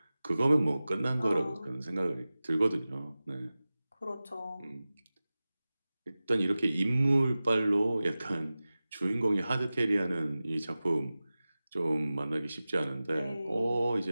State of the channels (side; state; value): both; inverted; correlation -0.97